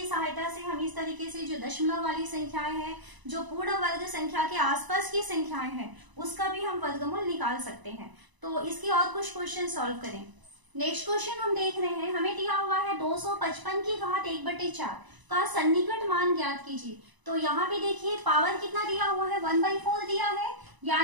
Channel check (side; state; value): left; late; 1.0 ms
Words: सहायता से हम इस तरीके से जो दशमलव वाली संख्याएं हैं, जो पूर्ण वर्ग संख्या के आसपास की संख्याएं हैं, उसका भी हम वर्गमूल निकाल सकते हैं। तो इसके और कुछ क्वेश्चन सॉल्व करें। नेक्स्ट क्वेश्चन हम देख रहे हैं, हमें दिया हुआ है 255 की घात 1/4 का सन्निकट मान ज्ञात कीजिए। तो यहाँ पे देखिए पावर कितना दिया हुआ है, 1/4 दिया है,